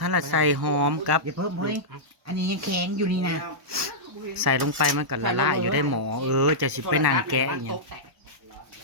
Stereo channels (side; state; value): left; late; 1.1 ms